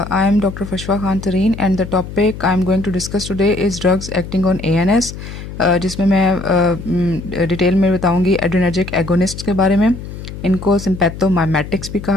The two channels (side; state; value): left; noise; hum, 11 dB below the sound